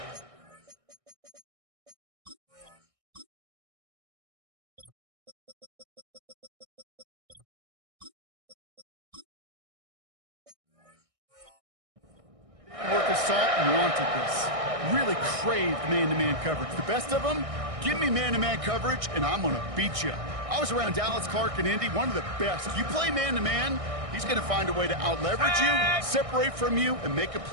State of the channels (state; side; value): late; left; 1.6 ms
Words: Worth of salt and wanted this. Really craved man-to-man coverage. The best of them, give me man-to-man coverage, and I'm going to beat you. I was around Dallas Clark and Indy, one of the best. You play man-to-man, he's going to find a way to out-leverage you, separate from you, and make a